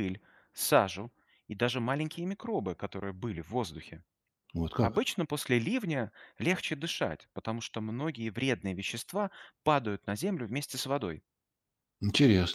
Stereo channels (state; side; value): identical; both; correlation 1.00